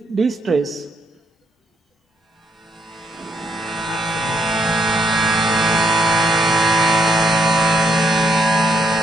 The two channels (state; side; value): normal; both; correlation 0.75